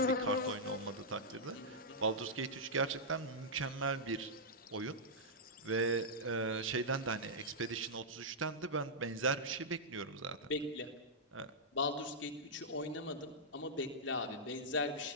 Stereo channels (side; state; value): both; normal; correlation -0.09